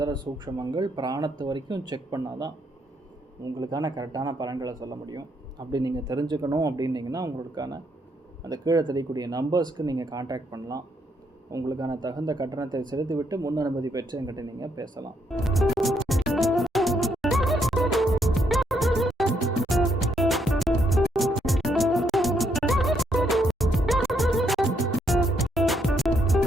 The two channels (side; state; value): both; normal; correlation 0.74